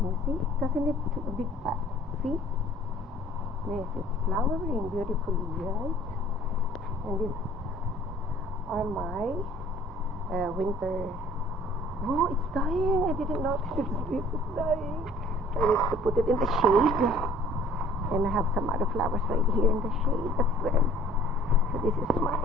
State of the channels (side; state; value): both; normal; correlation 0.53